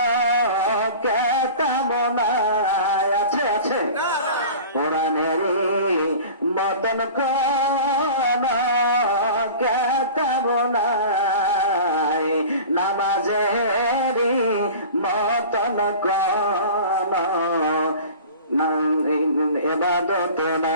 কেতাব নাই, আছে আছে? কোরআনেরই মতন কোন কেতাব নাই, নামাজেরই মতন কোন ইবাদত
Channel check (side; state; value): both; inverted; correlation -0.39